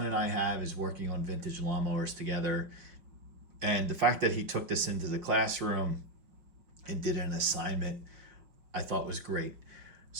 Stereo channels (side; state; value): left; late; 5.2 ms